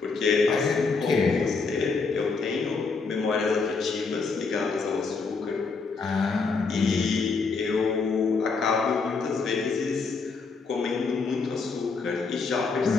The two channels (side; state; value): right; quieter; 4.5 dB